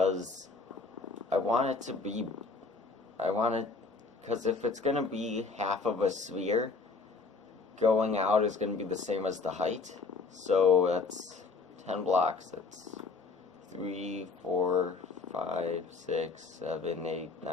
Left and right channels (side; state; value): right; quieter; 4.1 dB